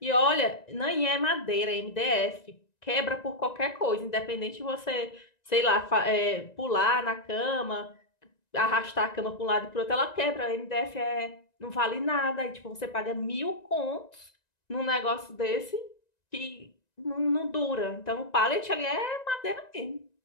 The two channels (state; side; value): late; right; 1.9 ms